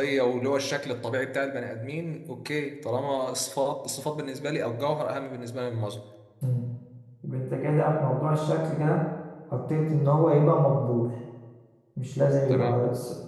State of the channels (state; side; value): identical; both; correlation 1.00